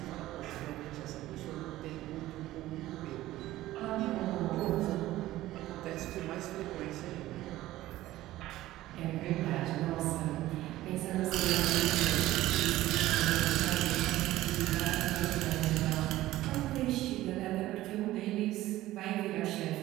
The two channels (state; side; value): quieter; left; 15.8 dB